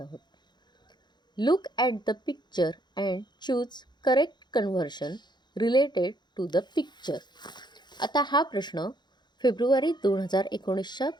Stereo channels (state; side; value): late; right; 0.21 ms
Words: Look at the picture and choose correct conversion related to the picture. आता हा प्रश्न फेब्रुवारी 2019च्या